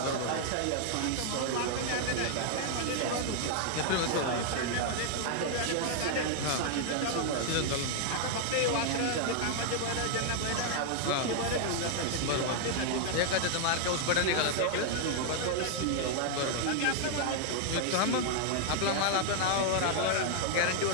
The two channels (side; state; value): both; different; correlation 0.00